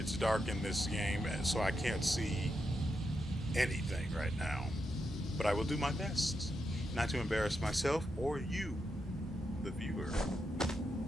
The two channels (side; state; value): both; normal; correlation 0.85